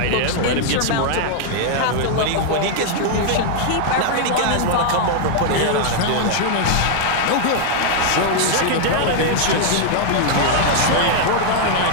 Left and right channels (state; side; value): different; both; correlation -0.01